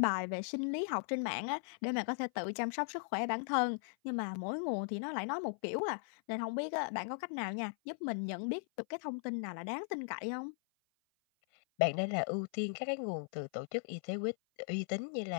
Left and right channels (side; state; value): right; silent; 52 dB below the other